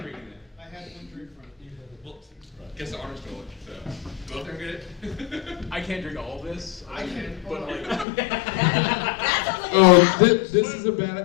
it. I had one drink from you. Well, guess the honor stole it. So go up there and get it. I can't drink all of this. I can, but like. Oh, this is a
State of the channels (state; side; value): drops out; right; at 8.1 s